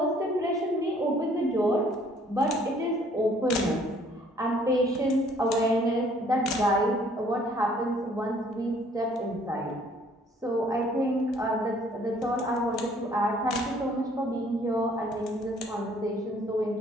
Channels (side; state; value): both; normal; correlation 0.60